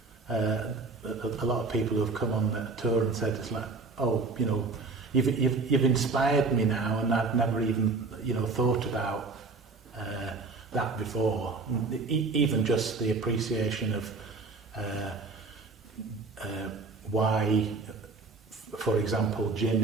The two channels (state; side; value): quieter; left; 4.0 dB